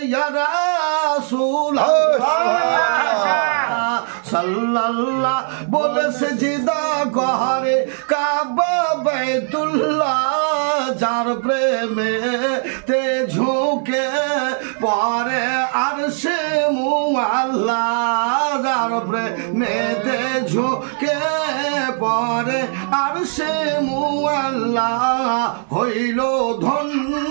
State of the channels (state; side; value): silent; left; 58 dB below the other